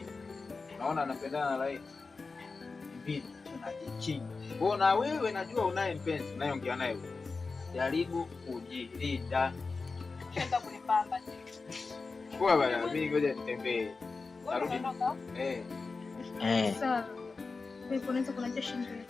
naona napendana na Laila. Inabidi tunajikinga. Mbona wewe najua unaye mpenzi, unayeongea naye wewe. Jaribu kujilinda. Kwenda kunipamba. Poa bwana, mimi ngoja nitembee. Narudi. Sawa. Wewe unaweza kuniacha shilingi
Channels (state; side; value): quieter; right; 4.2 dB